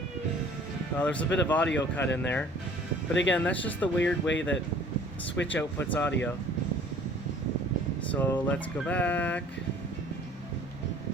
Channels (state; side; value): normal; both; correlation 0.52